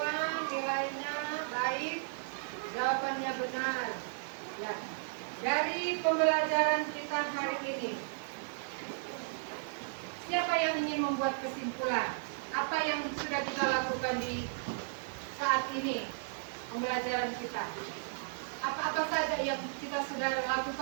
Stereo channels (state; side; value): silent; left; digital silence